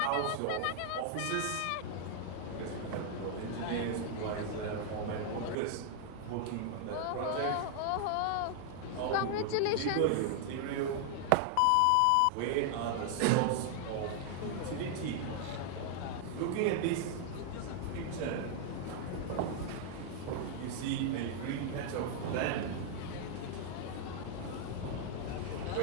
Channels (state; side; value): different; both; correlation 0.00